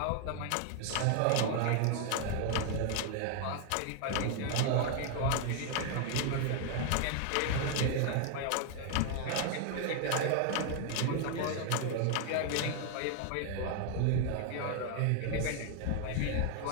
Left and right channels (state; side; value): different; both; correlation 0.00